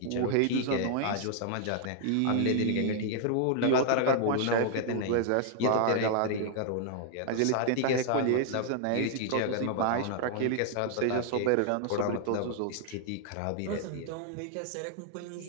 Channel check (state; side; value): different; both; correlation 0.00